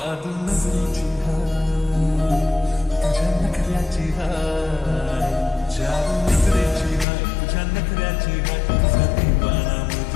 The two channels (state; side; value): drops out; right; at 7.1 s